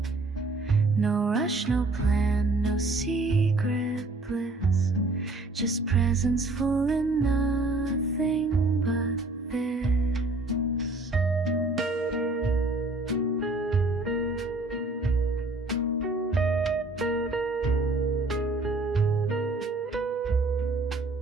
No rush, no plan, no secret bliss, just presence full enough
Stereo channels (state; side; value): quieter; left; 3.1 dB